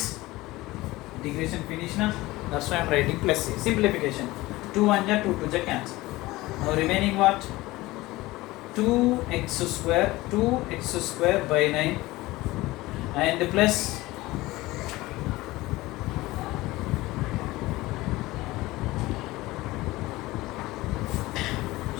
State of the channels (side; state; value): right; quieter; 19.3 dB